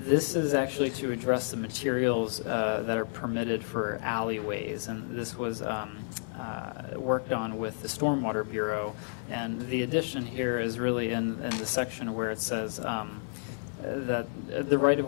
this is actually to address the materials that are permitted for alleyways, and this was worked on with the Stormwater Bureau. And the addition here is really in the section where it says that the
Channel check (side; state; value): right; silent; digital silence